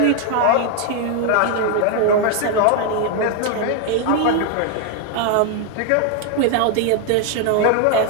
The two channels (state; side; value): different; both; correlation 0.00